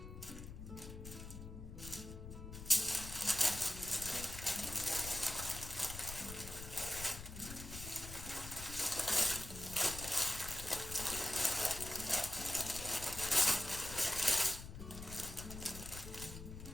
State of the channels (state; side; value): noise; left; rumble, 10 dB below the sound